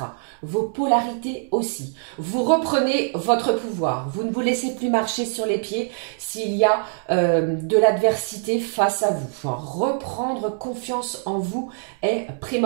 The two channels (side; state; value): left; silent; 60 dB below the other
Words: vos polarités aussi. Vous reprenez votre pouvoir. Vous ne vous laissez plus marcher sur les pieds s'il y a de l'adversité face à vous. Enfin, reprendre confiance en vous est